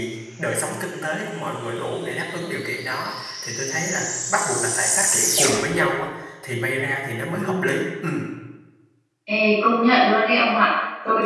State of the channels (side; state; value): both; identical; correlation 1.00